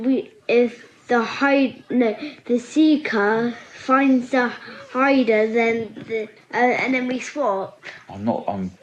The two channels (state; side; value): identical; both; correlation 1.00